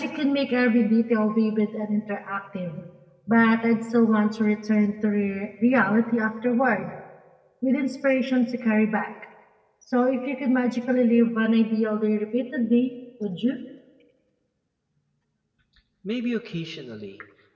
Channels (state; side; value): identical; both; correlation 1.00